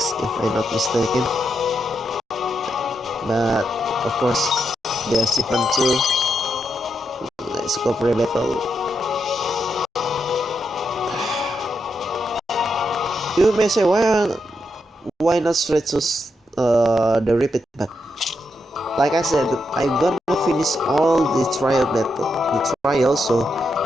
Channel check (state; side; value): normal; both; correlation 0.83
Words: if I'm not mistaken. But of course, the achievement too. Let's go for a battle. You may say, why not straight to the repeat? But like I said, I'm gonna finish all the trial, so